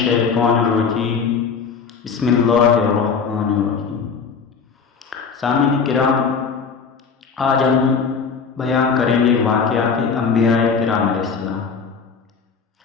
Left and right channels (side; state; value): right; quieter; 5.7 dB